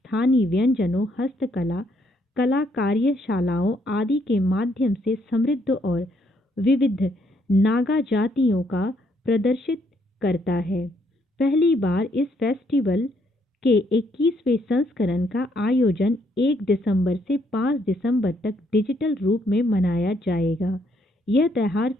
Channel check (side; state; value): both; normal; correlation 0.71